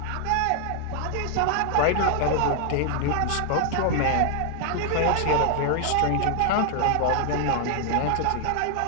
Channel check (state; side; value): different; both; correlation 0.00